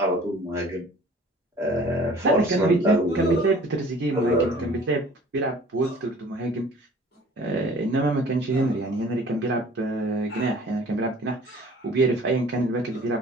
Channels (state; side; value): normal; both; correlation 0.49